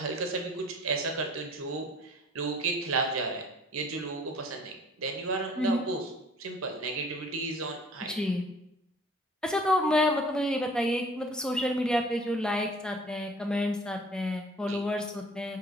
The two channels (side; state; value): both; normal; correlation 0.51